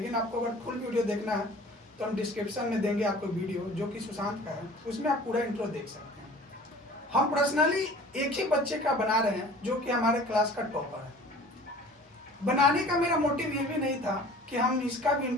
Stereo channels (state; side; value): normal; both; correlation 0.46